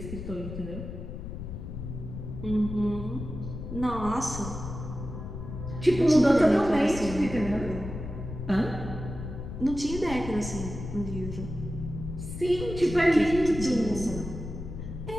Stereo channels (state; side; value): noise; left; rumble, 8 dB below the sound